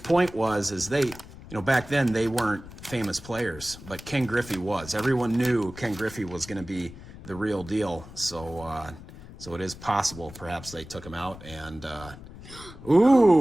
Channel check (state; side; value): noise; left; rumble, 16 dB below the sound